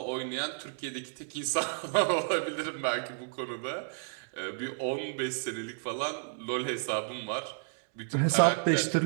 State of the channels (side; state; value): left; silent; digital silence